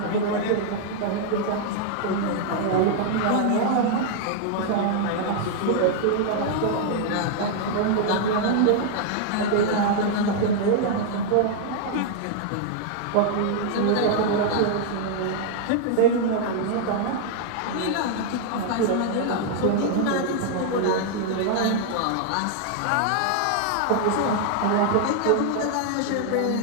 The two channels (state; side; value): different; both; correlation 0.00